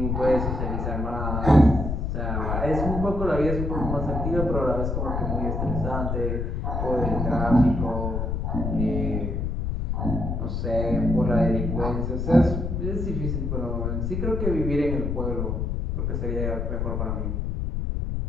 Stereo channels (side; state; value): left; noise; rumble, 1 dB below the sound